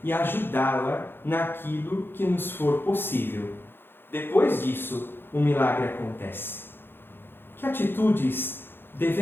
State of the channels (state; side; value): late; right; 0.10 ms